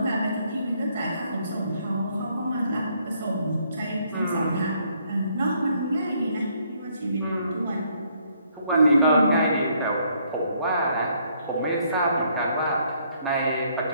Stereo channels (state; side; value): inverted; both; correlation -0.69